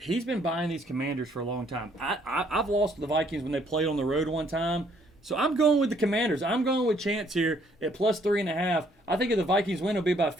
been buying these Commanders for a long time. I've lost the Vikings when they played on the road one time. So I'm going with the Commanders. I'm going with Chance here at +3.5. I think if the Vikings win, it'll be by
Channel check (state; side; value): normal; both; correlation 0.65